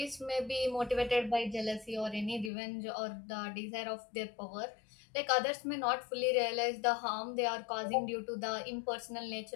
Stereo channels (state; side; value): drops out; right; at 2.5 s